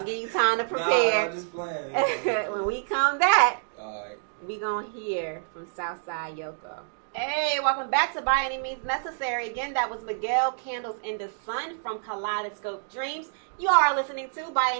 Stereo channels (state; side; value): silent; left; digital silence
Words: give you time to prepare. Nah, I'm just playing. When we come back, all right, we gonna hear from Southside Yoko. Hey, welcome back to By Any Means Necessary. Again, that was Miguel Candles in the Sun from Kaleidoscope Dreams. You are listening to By